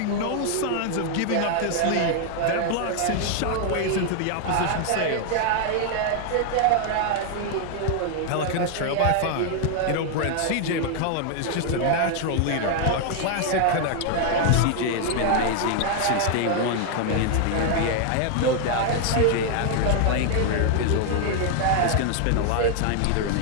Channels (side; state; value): both; different; correlation 0.00